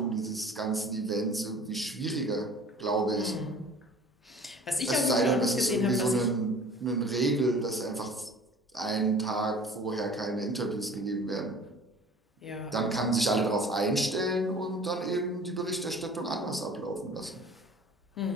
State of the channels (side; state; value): both; normal; correlation 0.46